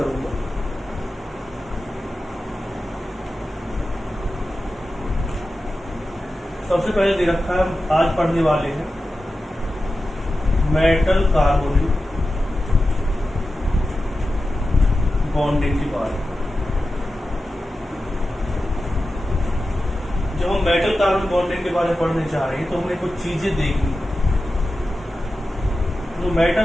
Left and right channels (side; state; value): both; normal; correlation 0.93